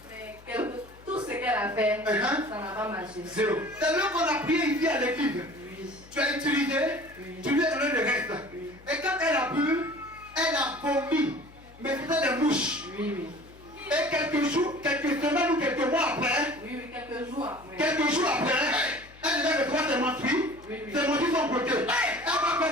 Mais tout ce qu'elle a fait, ça n'a pas marché. Zéro. C'est là qu'on a prié ici à l'église. Oui. Tu as utilisé, tu lui as donné le reste. Et quand elle a bu, elle a vomi. Mais c'était des mouches. Oui, oui. Et quelques jours, quelques semaines ou quelques mois après, Oui, oui, quelques jours après. elle devait le droit de mentir. Oui, oui. C'est mentir son côté. Elle va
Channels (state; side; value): noise; left; hum, 23 dB below the sound